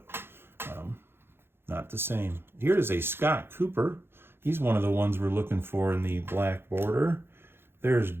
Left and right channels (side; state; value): left; late; 0.11 ms